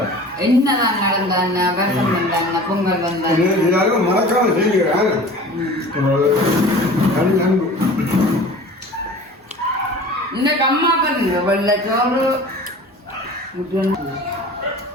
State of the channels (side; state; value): both; normal; correlation 0.41